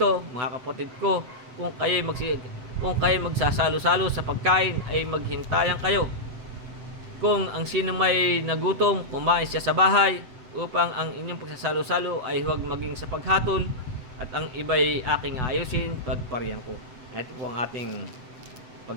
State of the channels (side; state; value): left; late; 8.0 ms